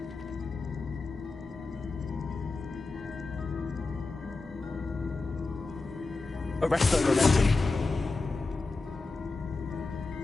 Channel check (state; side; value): quieter; right; 3.6 dB